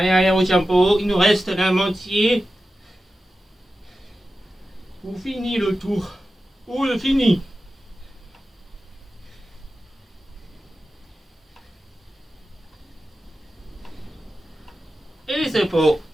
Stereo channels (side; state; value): both; normal; correlation 0.93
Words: allez, au tempo. Il nous reste la moitié. Vous finissez le tour. Vous le finissez. Et les épaules,